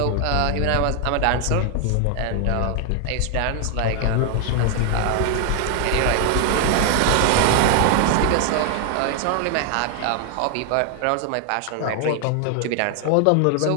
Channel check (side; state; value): both; different; correlation 0.00